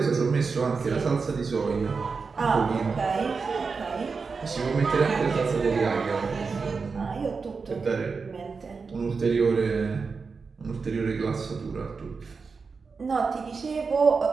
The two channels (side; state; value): left; quieter; 4.9 dB